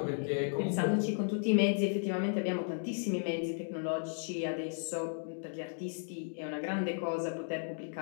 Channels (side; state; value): right; silent; digital silence